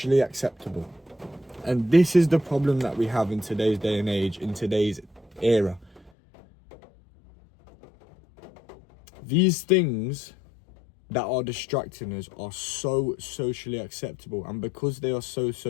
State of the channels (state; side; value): drops out; right; at 6.1 s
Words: acceptable. And this is the problem that we have in today's day and age, in today's era. These things that are distracting us are so socially acceptable, and because they are so